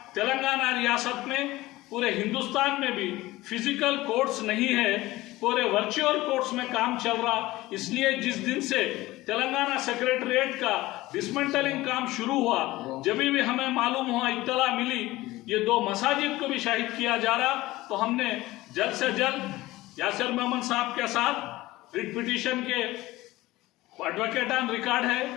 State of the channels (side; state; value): right; quieter; 18.3 dB